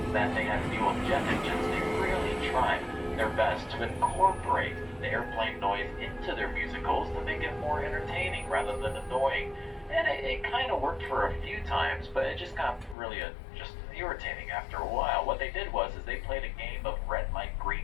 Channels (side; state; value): right; drops out; at 13.0 s